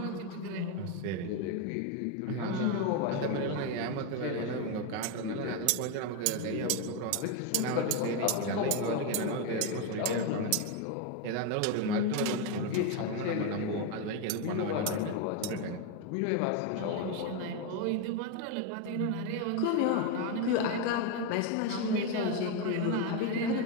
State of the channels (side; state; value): both; different; correlation 0.02